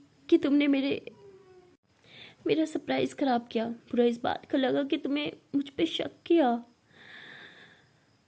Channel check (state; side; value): identical; both; correlation 1.00